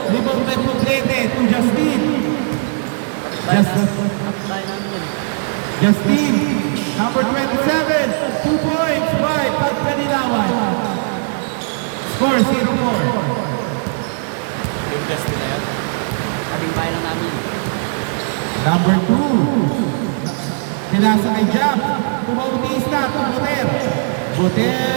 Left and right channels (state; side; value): silent; left; digital silence